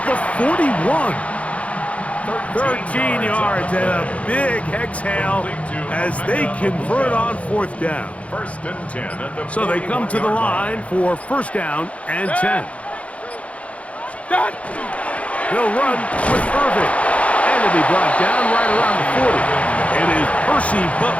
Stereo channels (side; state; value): right; late; 0.064 ms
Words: the 41. 13 yards and a big exhale as they convert on fourth down. First and 10 at the So they come to the line for first down and 10. Done. They'll run with Irving. And it'll be brought down right around the 40. It is Percy